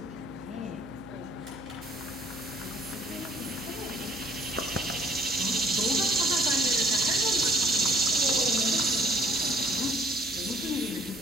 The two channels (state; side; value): noise; right; hum, 20 dB below the sound